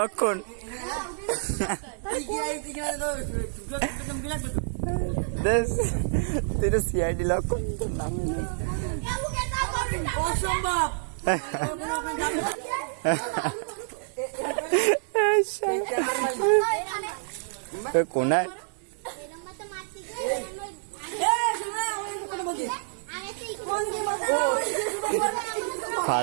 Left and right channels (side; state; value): left; silent; 59 dB below the other